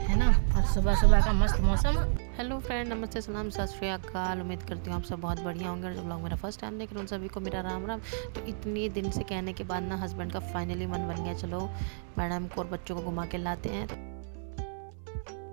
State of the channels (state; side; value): silent; left; 55 dB below the other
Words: ना। और सुबह सुबह का मस्त मौसम। हेलो फ्रेंड, नमस्ते, सलाम, सत श्री अकाल। उम्मीद करती हूँ आप सब बहुत बढ़िया होंगे। और जो लोग मेरा फर्स्ट टाइम देख रहे हैं उन सभी को मेरा राम राम। तो इतनी दिन से कहने के बाद ना हस्बैंड का फाइनली मन बन गया, चलो मैडम को और बच्चों को घुमा के लाते हैं।